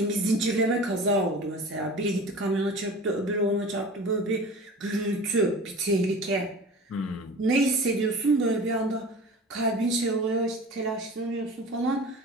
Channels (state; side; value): normal; both; correlation 0.37